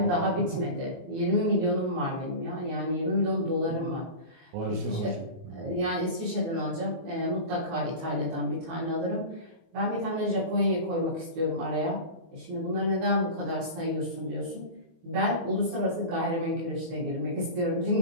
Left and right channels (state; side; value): late; left; 24 ms